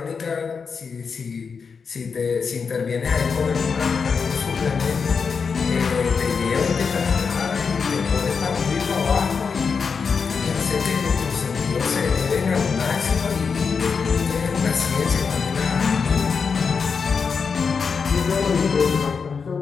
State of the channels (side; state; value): right; quieter; 5.6 dB